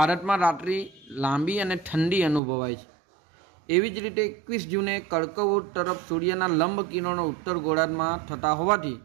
રાત્રિ લાંબી અને ઠંડી અનુભવાય છે. એવી જ રીતે 21 જૂને કર્કવૃત્ત તરફ સૂર્યના લંબ કિરણો ઉત્તર ગોળાર્ધમાં થતા હોવાથી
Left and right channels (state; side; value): drops out; left; at 2.4 s